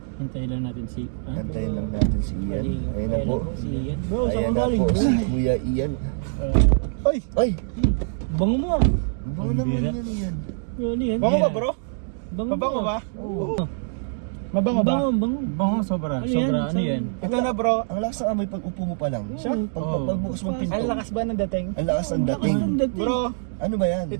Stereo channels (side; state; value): left; silent; digital silence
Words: Hintayin lang natin si... antayin lang natin si Ian. Ayun na po. Si Ian. Bro, saan Ayan ka na galing po, bro? si Kuya Ian. Oy, Ay! Bango mo ah. Bango naman yan yan. Ano yan? bango ba bro? Bango Mabango mo. ba? Oo. Mabango ba? Bango. Bango sobra. Ano yan? Sobra. Ano Saan? yan? Ito na bro, Ang lakas ng amoy pag upo mo pa lang. Siya? Pagbukas mong pinto. ang lakas ba ng dating? Ang lakas ng dating. Ang dating. Bro, Ano ba yan?